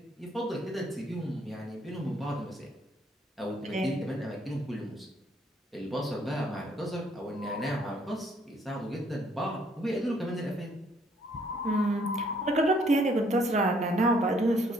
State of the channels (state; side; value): normal; both; correlation 0.66